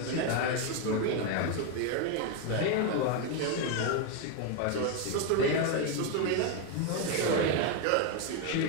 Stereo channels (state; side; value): different; both; correlation 0.02